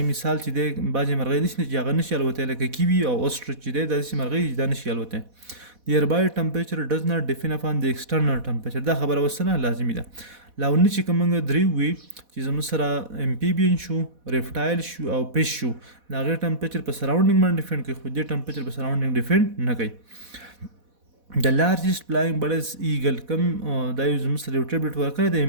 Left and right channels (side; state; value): left; late; 4.1 ms